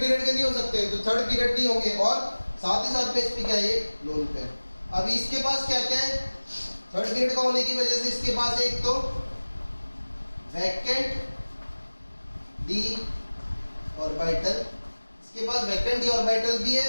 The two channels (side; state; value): both; inverted; correlation -1.00